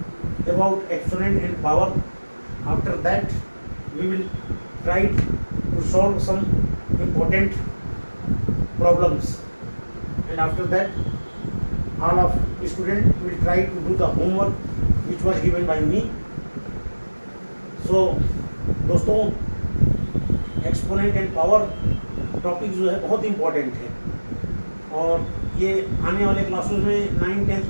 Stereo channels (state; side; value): inverted; both; correlation -1.00